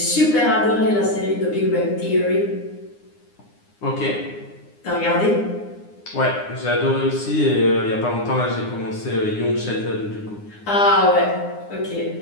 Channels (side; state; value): right; late; 9.7 ms